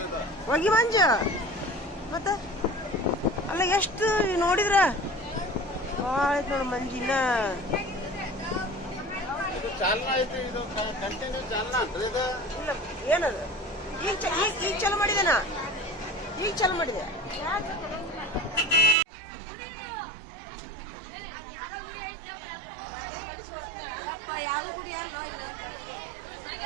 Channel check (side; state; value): left; drops out; at 18.9 s